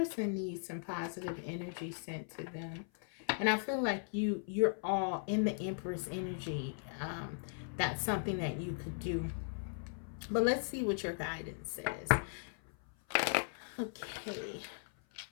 needs some positive energy sent to them. And I feel like you're all in the Empress energy. That's something that you could do. But let's see what your guidance says. Okay.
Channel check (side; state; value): right; silent; 53 dB below the other